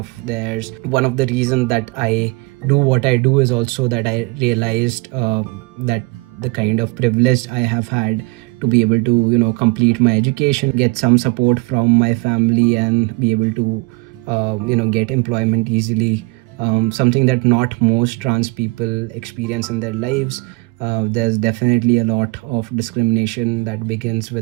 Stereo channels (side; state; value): left; quieter; 26.8 dB